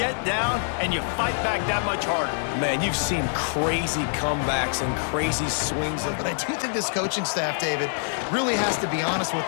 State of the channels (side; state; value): right; silent; 62 dB below the other